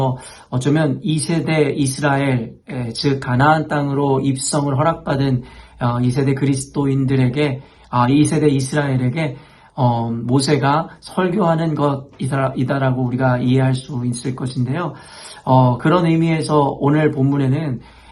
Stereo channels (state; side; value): identical; both; correlation 1.00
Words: 어쩌면 2세대 이스라엘, 즉 가나안 땅으로 입성을 허락받은 2세대 그리스도인들에게 2세대 이스라엘에게 모세가 설교하는 것이다라고 우리가 이해할 수 있을 것인데요. 그런 의미에서 오늘 본문에는